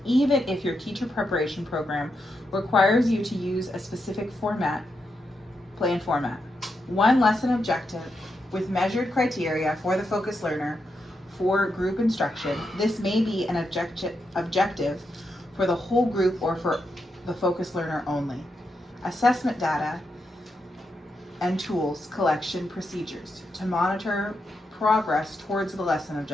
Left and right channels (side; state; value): both; normal; correlation 0.84